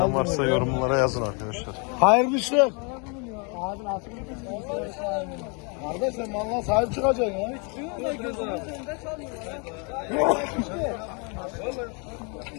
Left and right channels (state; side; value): quieter; right; 34.8 dB